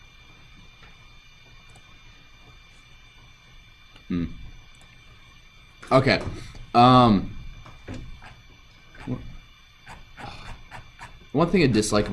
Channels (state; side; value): identical; both; correlation 1.00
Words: Okay. One thing I dislike